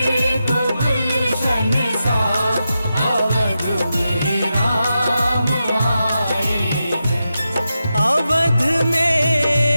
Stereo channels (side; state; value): both; inverted; correlation -0.89